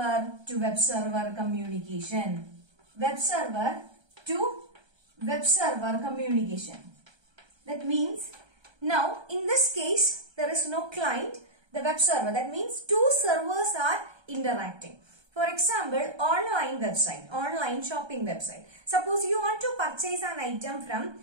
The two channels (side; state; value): left; late; 1.3 ms